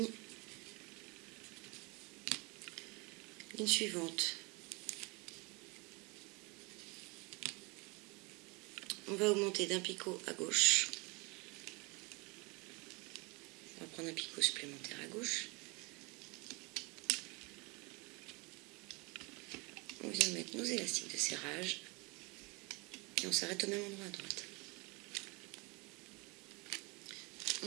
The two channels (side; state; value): left; quieter; 28.2 dB